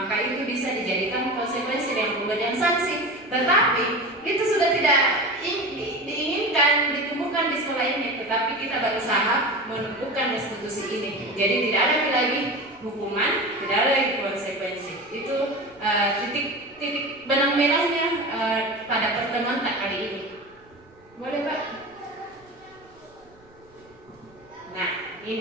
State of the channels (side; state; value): right; noise; rumble, 29 dB below the sound